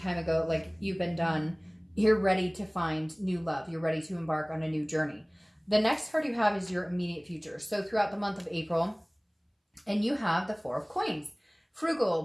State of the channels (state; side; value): identical; both; correlation 1.00